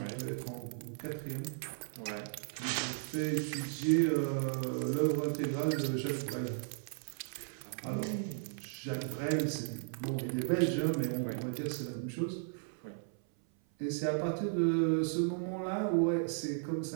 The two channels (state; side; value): silent; left; 54 dB below the other